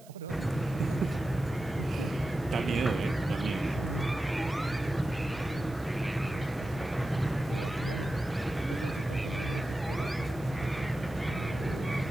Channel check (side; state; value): right; noise; hiss, 24 dB below the sound